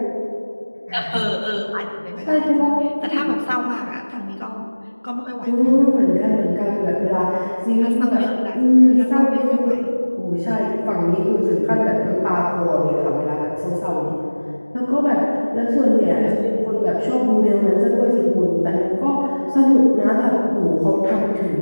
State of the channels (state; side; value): inverted; both; correlation -1.00